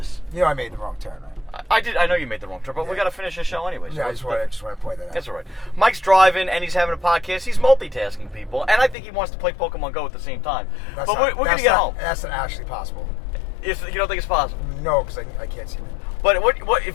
You know, I made the wrong turn. I did. I know you made the wrong turn, but we got to finish the show anyway. So yeah, I just want to point that out. That's all right. Mike's driving and he's having a podcast. He's multitasking people, and I think he wants to play Pokemon Go at the same time. But we're going to get home. That's not actually possible. If you don't think it's possible? No, because I can't see it. But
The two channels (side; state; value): right; drops out; at 9.0 s